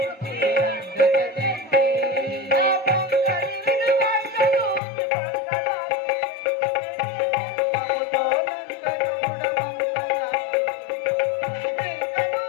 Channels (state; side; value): drops out; right; at 4.8 s